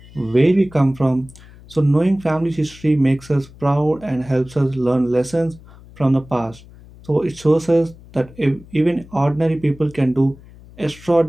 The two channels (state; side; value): noise; left; hum, 22 dB below the sound